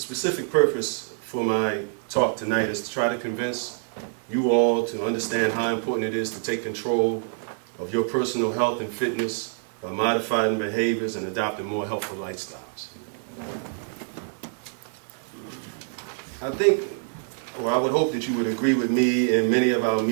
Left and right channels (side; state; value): left; silent; digital silence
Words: purpose for my talk tonight is to try to convince you all to understand how important it is to take control of your personal health and fitness by modifying behaviors and adopting more healthful lifestyles. I think, or I would hope that you would agree with me. In many of our